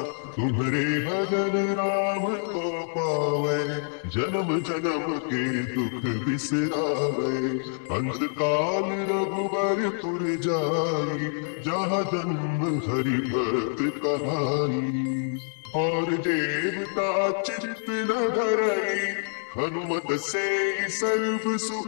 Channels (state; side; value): silent; right; 61 dB below the other